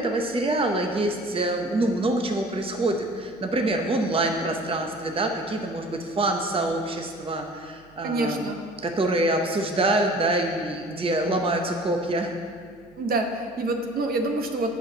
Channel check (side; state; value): right; noise; hum, 29 dB below the sound